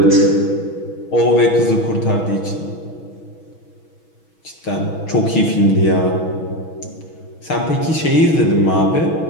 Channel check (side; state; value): right; late; 6.2 ms